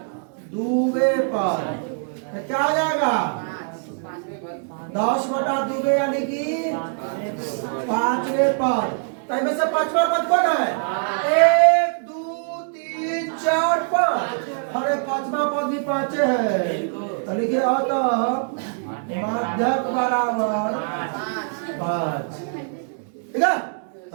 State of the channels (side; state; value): left; silent; 63 dB below the other